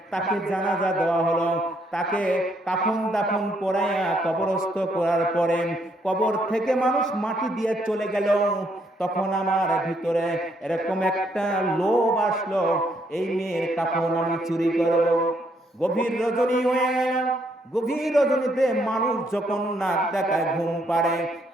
তাকে জানাজা দেওয়া হলো, তাকে কাফন দাফন পরাইয়া কবরস্থ করার পরে কবর থেকে মানুষ মাটি দিয়ে চলে গেল। তখন আমার ভিতরে এরকম একটা লোভ আসলো, এই মেয়ের কাফন আমি চুরি করব। গভীর রজনী হয়ে গেল, গভীর রজনীতে মানুষ যখন নাক ডাকায় ঘুম পাড়ে,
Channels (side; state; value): both; normal; correlation 0.72